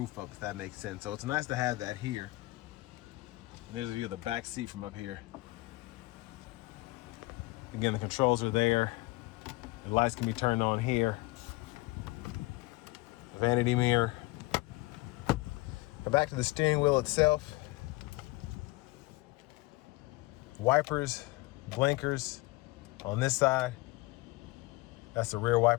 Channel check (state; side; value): quieter; right; 21.7 dB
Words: up, if that makes sense. So it's nice to have that here. And there's a view of the back seat from up here. Again, the controls are there. The lights can be turned on here. Vanity mirror. Now back to the steering wheel itself. Wipers, blinkers on this side. That's the rear